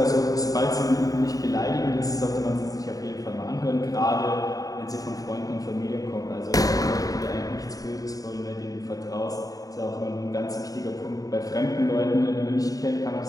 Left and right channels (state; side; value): late; right; 0.17 ms